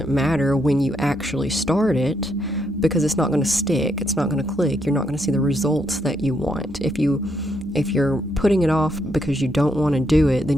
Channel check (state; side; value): normal; both; correlation 0.77